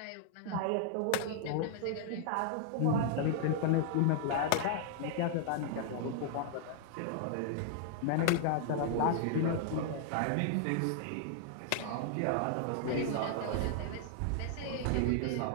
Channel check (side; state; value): both; different; correlation -0.01